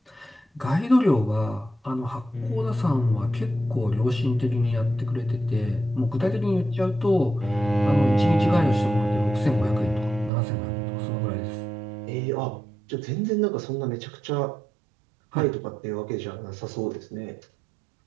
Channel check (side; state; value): left; drops out; at 10.3 s